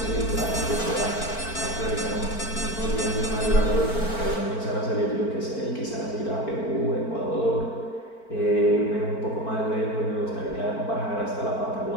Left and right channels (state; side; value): late; right; 4.5 ms